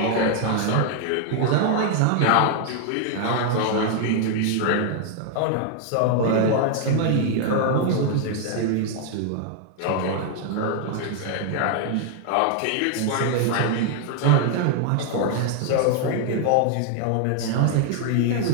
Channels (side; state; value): both; different; correlation 0.00